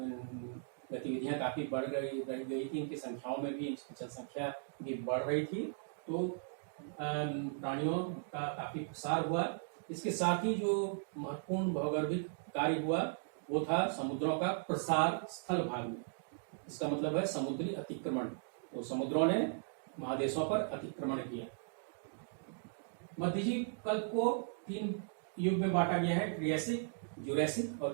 गतिविधियां काफी बढ़ गई थी, इनकी संख्याओं में भी, जनसंख्या भी बढ़ रही थी। तो प्राणियों का काफी प्रसार हुआ। इसके साथ ही जो महत्वपूर्ण भौगोलिक कार्य हुआ वो था समुद्रों का प्रसार स्थल भाग में। इसका मतलब है समुद्री अतिक्रमण। तो समुद्रों ने महादेशों पर अतिक्रमण किया। मध्यजीव कल्प को 3 युग में बांटा गया है, ट्रियासिक, जुरैसिक और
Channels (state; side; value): silent; left; digital silence